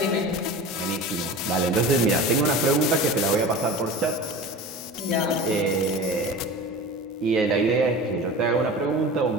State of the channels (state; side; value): normal; both; correlation 0.34